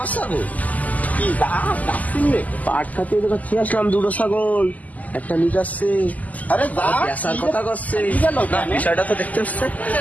ছাগল কি যাচ্ছেন রে? পাট খাতে খেয়ে আসলাম, 2টো ছাগল, একটা নিয়ে যাচ্ছে, আরে বেচার কথা করছে। না, বিষয়টা তো দেখতে হচ্ছে।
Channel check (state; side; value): late; right; 0.078 ms